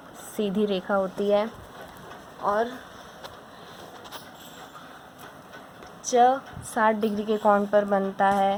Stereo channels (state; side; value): identical; both; correlation 1.00